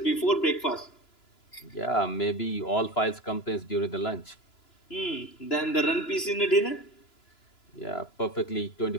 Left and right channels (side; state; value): right; late; 2.9 ms